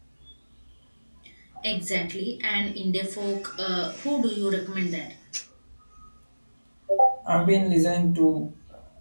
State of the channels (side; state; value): both; inverted; correlation -1.00